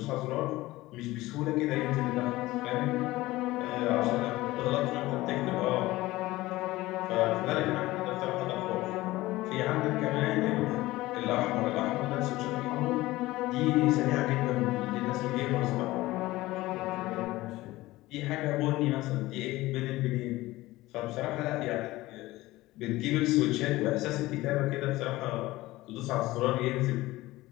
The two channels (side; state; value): right; quieter; 18.4 dB